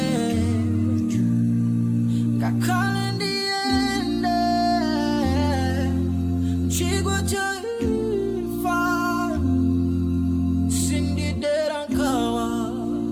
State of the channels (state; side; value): identical; both; correlation 1.00